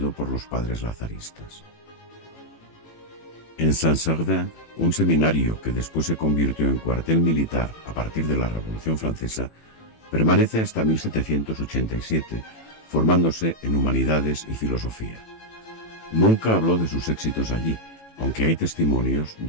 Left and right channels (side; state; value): right; late; 18 ms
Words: por los padres lazaristas. En Saint-Servais, un seminario que después se convirtió en cuartel militar a partir de la Revolución Francesa, permanece hasta 1787, formándose en humanidades y filosofía. Nunca habló de sus éxitos allí, aunque hay testimonios